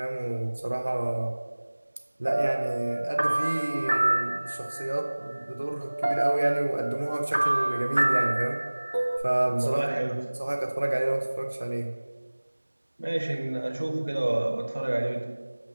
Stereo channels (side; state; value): both; inverted; correlation -1.00